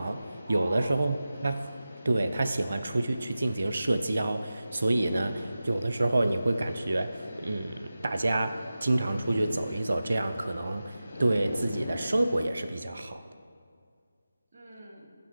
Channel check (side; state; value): both; inverted; correlation -0.94